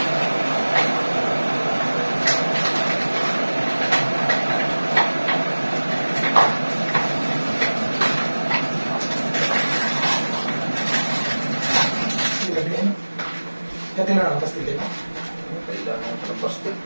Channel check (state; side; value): inverted; both; correlation -1.00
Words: Kati na lang, pastil din.